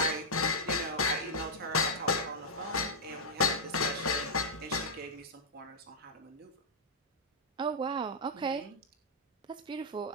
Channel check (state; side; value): normal; both; correlation -0.07